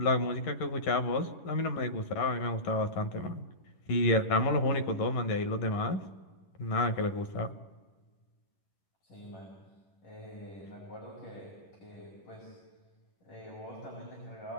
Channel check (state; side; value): late; right; 11 ms